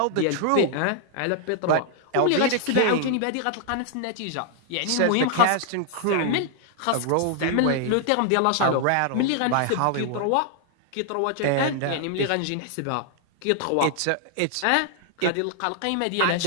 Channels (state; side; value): different; both; correlation 0.00